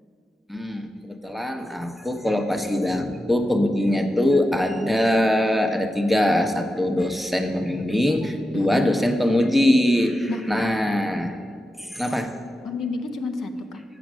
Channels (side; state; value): both; normal; correlation 0.90